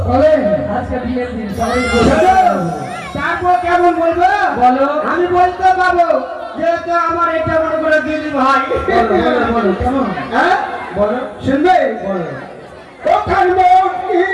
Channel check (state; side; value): identical; both; correlation 1.00